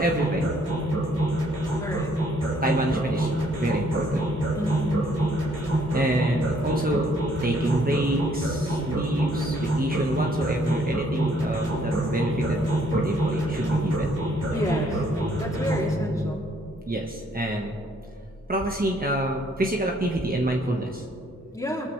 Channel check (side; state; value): both; normal; correlation 0.65